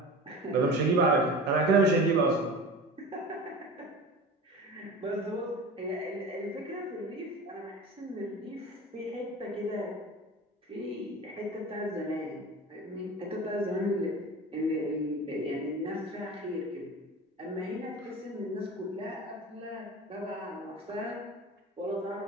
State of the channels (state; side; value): normal; both; correlation 0.34